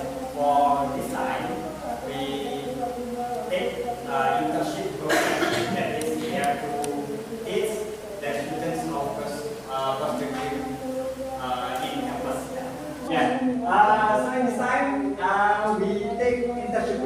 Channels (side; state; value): both; identical; correlation 1.00